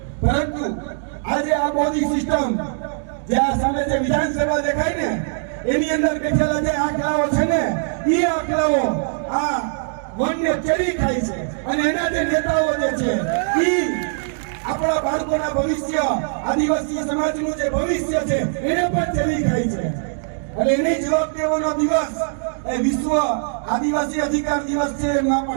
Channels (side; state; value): left; silent; digital silence